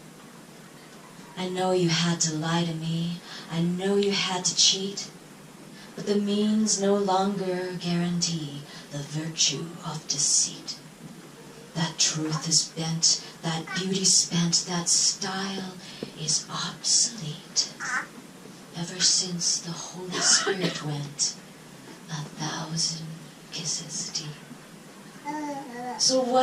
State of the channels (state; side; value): identical; both; correlation 1.00